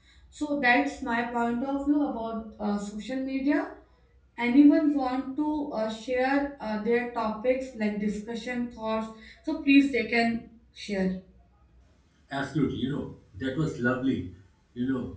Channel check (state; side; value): identical; both; correlation 1.00